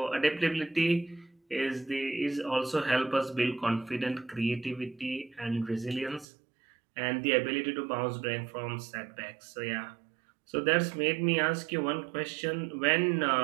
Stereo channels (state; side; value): drops out; left; at 6.2 s